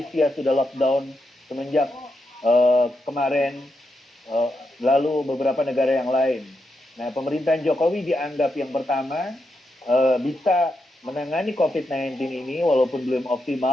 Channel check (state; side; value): normal; both; correlation 0.84